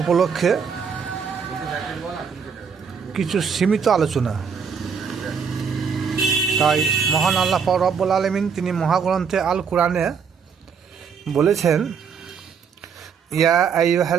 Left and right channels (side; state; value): left; quieter; 6.4 dB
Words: উপলক্ষে কিছু সীমিত আলোচনা। তাই মহান আল্লাহ পাক রব্বুল আলামিন তিনি মহাগ্রন্থে আল কোরআনে বলেছেন, ইয়া